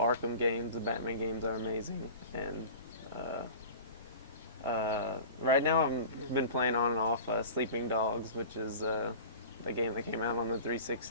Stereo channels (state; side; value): inverted; both; correlation -0.38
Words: games. The Batman games are amazing. And right now I've been playing on and off Sleeping Dogs, which is a game that came out on the